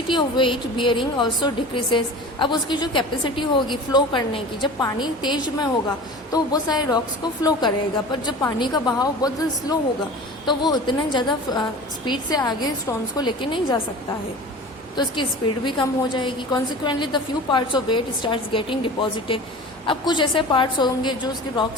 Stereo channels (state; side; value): normal; both; correlation 0.37